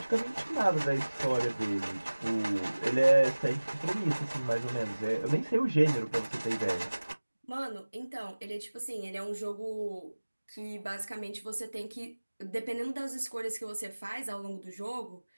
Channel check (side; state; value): both; inverted; correlation -1.00